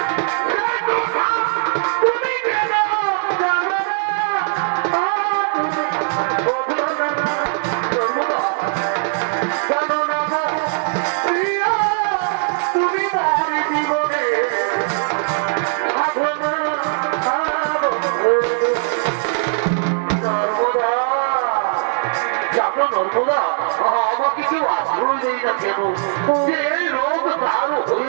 আমাকে কেউ আশ্রয় দেয় না কেন, যে এই রোগ তারও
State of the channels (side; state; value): left; silent; 58 dB below the other